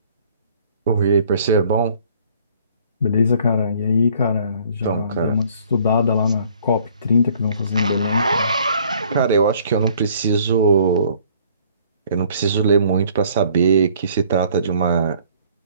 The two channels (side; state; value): both; inverted; correlation -0.58